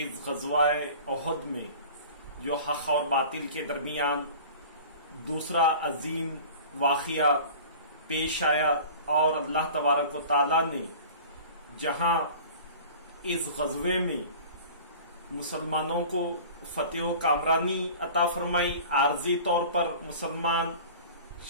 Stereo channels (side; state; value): both; inverted; correlation -0.41